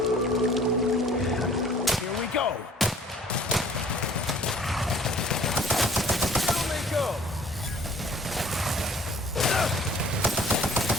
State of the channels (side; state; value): both; normal; correlation 0.53